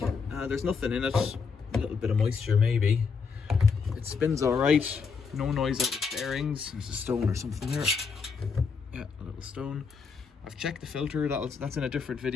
there's nothing in it. A little bit of moisture maybe. It spins alright, no noise out of the bearings. There's a stone or something there. Yeah, a little stone. I've checked the filter, that's in a different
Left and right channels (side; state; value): right; quieter; 5.4 dB